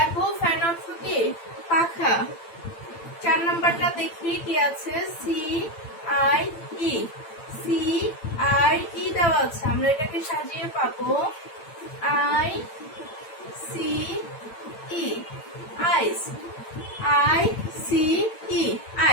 ফ্যান অর্থ কি? পাখা। 4 নাম্বারটা দেখি কি আছে? C I E. C I E দেওয়া আছে, আমরা এটাকে সাজিয়ে পাবো I C E, ice. I C E,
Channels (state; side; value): late; right; 8.8 ms